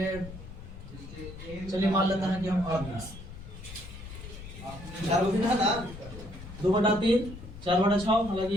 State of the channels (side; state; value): left; noise; rumble, 13 dB below the sound